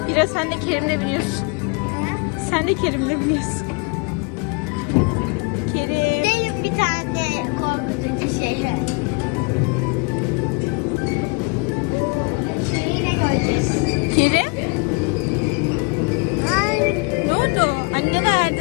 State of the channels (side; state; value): right; quieter; 31.0 dB